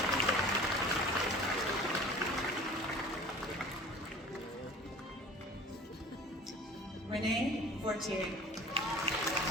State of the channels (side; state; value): both; normal; correlation 0.43